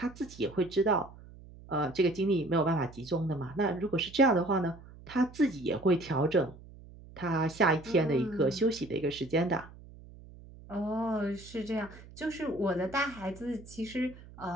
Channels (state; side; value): noise; right; hum, 19 dB below the sound